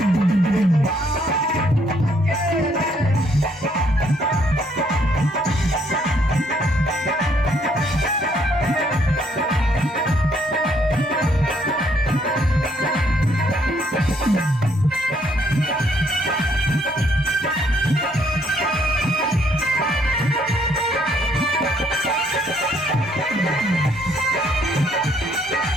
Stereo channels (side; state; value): both; normal; correlation 0.68